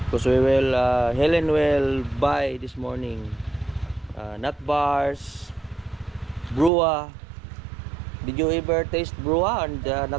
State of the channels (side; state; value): left; drops out; at 6.7 s